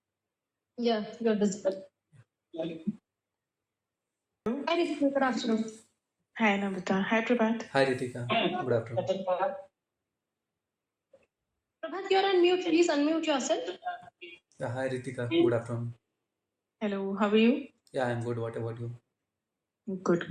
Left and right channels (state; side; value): identical; both; correlation 1.00